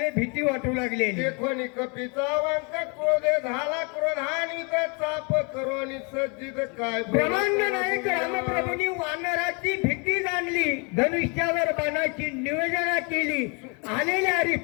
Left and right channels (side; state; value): right; quieter; 33.3 dB